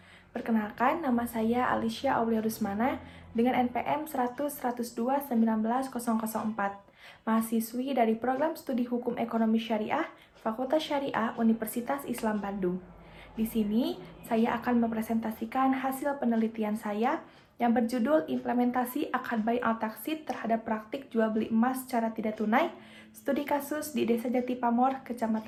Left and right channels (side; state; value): both; identical; correlation 1.00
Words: Perkenalkan, nama saya Alicia Aulia Rusmana dengan NPM 100-102-19-004, mahasiswi dari Program Studi Hukum Ekonomi Syariah, Fakultas Syariah Universitas Islam Bandung. Di sini, saya akan mempresentasikan hasil penelitian saya yang berjudul Implementasi Akad Bai Al-Taksid terhadap praktik jual beli emas secara tidak tunai, studi kasus di Desa Jati Pamor,